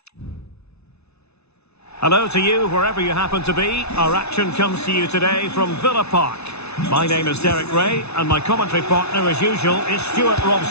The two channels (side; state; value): right; late; 0.80 ms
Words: Hello to you, wherever you happen to be. Our action comes to you today from Villa Park. My name is Derek Ray, and my commentary partner, as usual, is Stuart